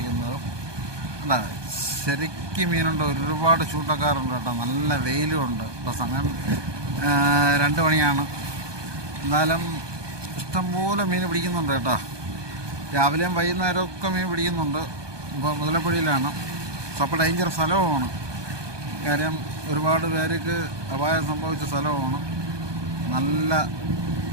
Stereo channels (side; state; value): left; late; 1.2 ms